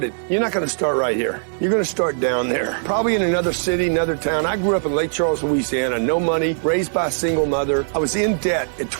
you're not going to start right here. You're going to start down there, probably in another city, another town. I grew up in Lake Charles, Louisiana, no money, raised by a single mother. I was in debt at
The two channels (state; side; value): silent; left; digital silence